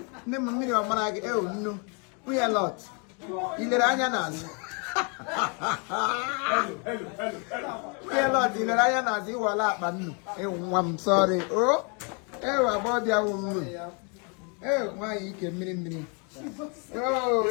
Never million of Marag. Oh, no. We are a lot. In the Rayanas. We are a lot in the Rayanas. You are up, I'm sorry. Oh, about your woman. Oh, why you can me? Oh,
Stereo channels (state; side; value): quieter; right; 35.8 dB